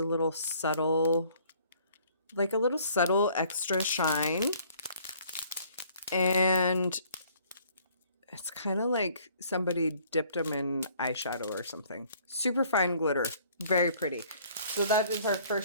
little subtle, like a little subtle extra shine. And it's kind of like somebody dipped them in eyeshadow or something. Super fine glitter. Very pretty. So that is our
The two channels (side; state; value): both; inverted; correlation -0.58